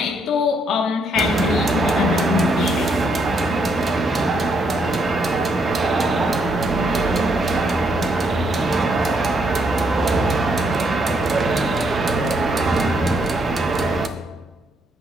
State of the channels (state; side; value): normal; both; correlation 0.74